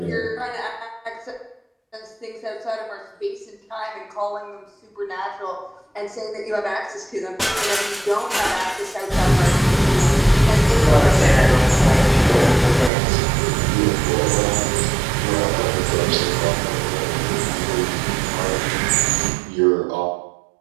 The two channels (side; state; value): left; drops out; at 12.9 s